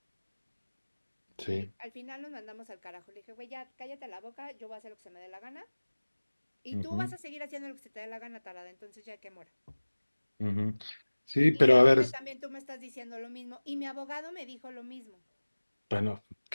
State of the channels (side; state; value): both; inverted; correlation -1.00